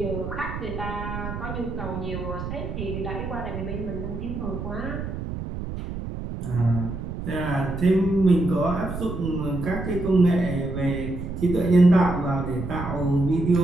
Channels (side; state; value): right; noise; rumble, 6 dB below the sound